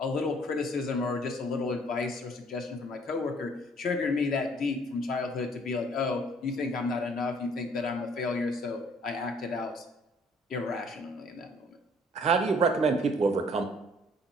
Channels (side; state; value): both; normal; correlation 0.59